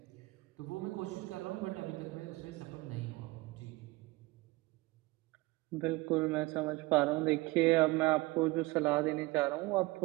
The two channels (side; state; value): left; quieter; 21.7 dB